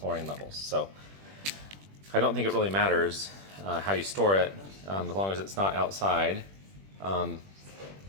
levels. So I don't think it really matters how you store it, as long as it's not outside. I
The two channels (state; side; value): late; left; 21 ms